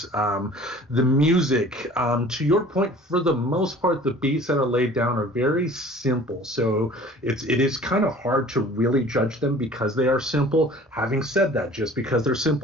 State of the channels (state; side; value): normal; both; correlation 0.48